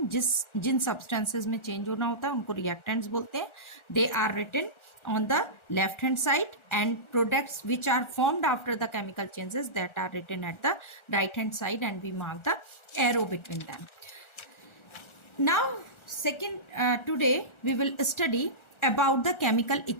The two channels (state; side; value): late; right; 1.4 ms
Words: जिन substances में change होना होता है उनको रिएक्टेंट्स बोलते हैं. They are written on the left hand side, and products which are formed after the chemical changes, that are written at the right hand side, and we mark the arrow between them. Now today we will study about the chemical